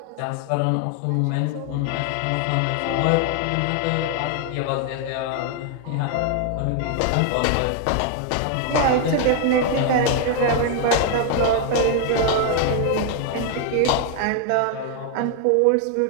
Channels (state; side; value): different; both; correlation 0.00